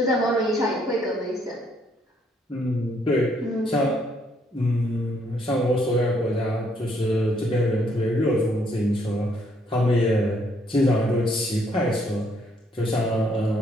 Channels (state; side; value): normal; both; correlation 0.69